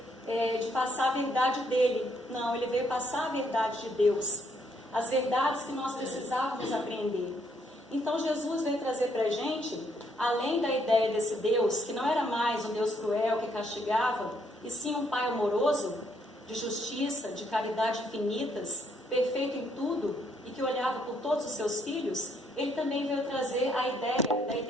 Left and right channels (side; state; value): both; normal; correlation 0.71